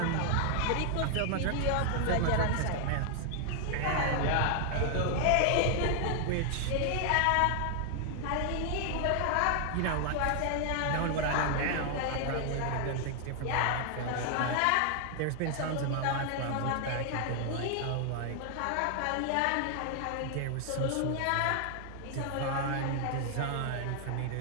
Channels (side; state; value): both; different; correlation 0.00